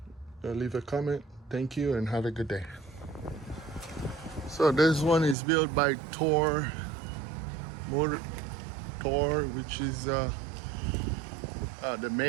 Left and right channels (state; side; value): drops out; left; at 5.4 s